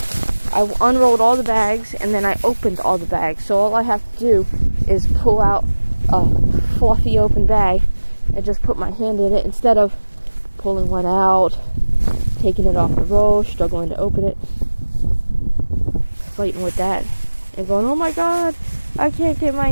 I unrolled all the bags and then I opened all the bags. So all I have to do is pull out a fluffy open bag and just put my hand in it instead of pulling one out, taking it off the roll, struggling to open it, fighting with that, and going, oh my god, I can't get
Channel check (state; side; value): inverted; both; correlation -1.00